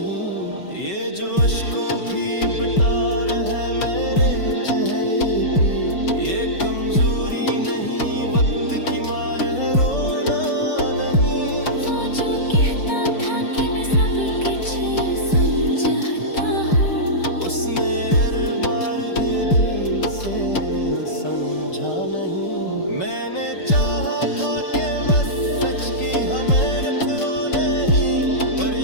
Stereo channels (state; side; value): late; right; 5.3 ms